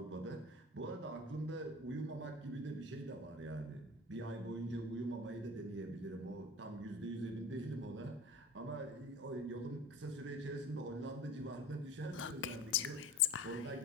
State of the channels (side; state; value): both; normal; correlation 0.38